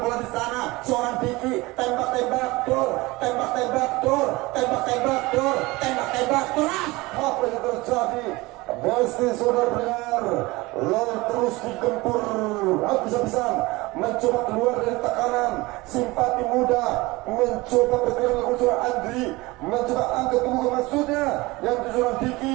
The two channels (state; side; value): quieter; left; 21.8 dB